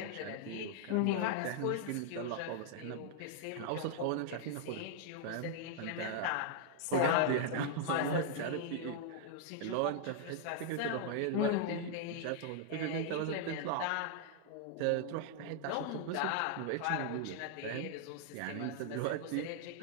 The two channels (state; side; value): different; both; correlation -0.01